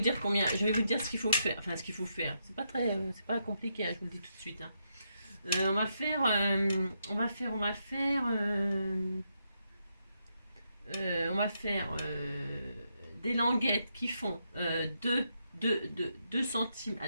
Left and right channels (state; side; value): inverted; both; correlation -0.81